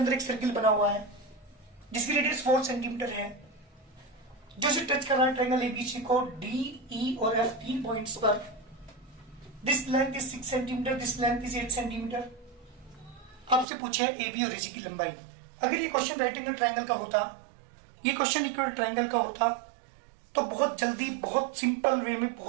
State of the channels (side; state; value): left; drops out; at 13.7 s